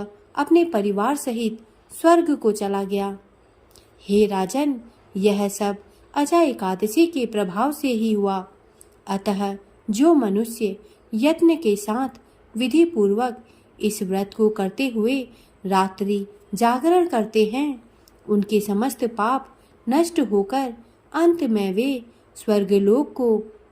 अपने परिवार सहित स्वर्ग को चला गया। हे राजन, यह सब अजा एकादशी के प्रभाव से ही हुआ। अतः जो मनुष्य यत्न के साथ विधि पूर्वक इस व्रत को करते हुए रात्रि जागरण करते हैं, उनके समस्त पाप नष्ट होकर अंत में वे स्वर्गलोक को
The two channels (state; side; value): identical; both; correlation 1.00